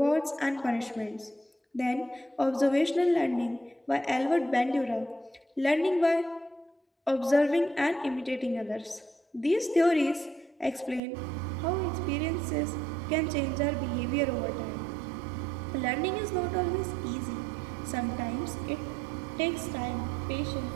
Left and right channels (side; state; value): left; drops out; at 11.0 s